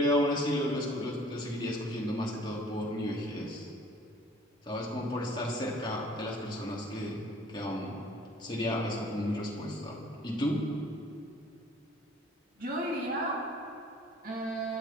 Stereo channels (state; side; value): normal; both; correlation 0.53